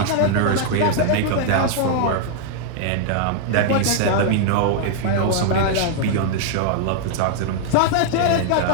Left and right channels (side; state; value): both; different; correlation -0.01